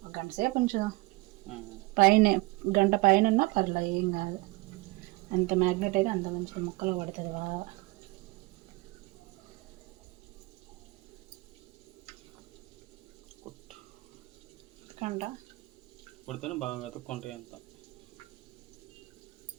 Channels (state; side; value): quieter; left; 23.0 dB